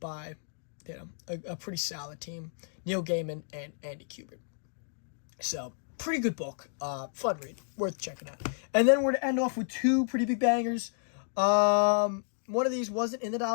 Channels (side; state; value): right; silent; digital silence